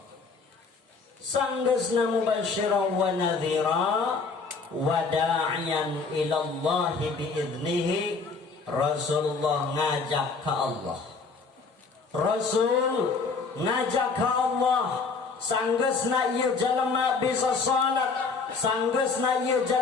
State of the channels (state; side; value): quieter; right; 4.6 dB